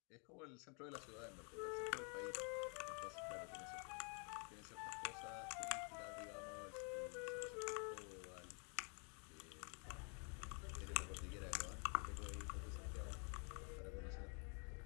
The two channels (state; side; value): quieter; right; 38.1 dB